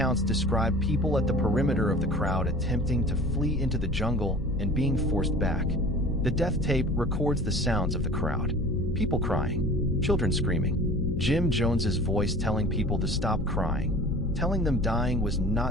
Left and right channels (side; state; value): left; noise; hum, 7 dB below the sound